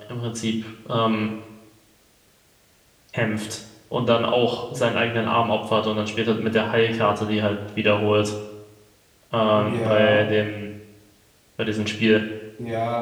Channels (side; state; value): both; identical; correlation 1.00